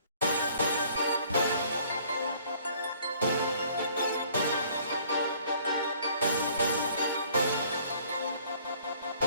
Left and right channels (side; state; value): both; inverted; correlation -0.58